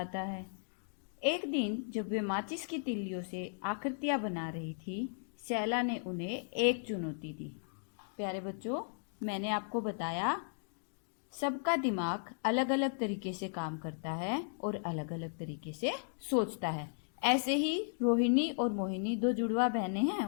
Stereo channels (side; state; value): right; silent; digital silence